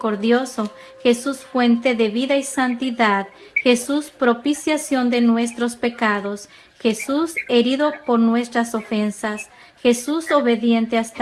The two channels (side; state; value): both; identical; correlation 1.00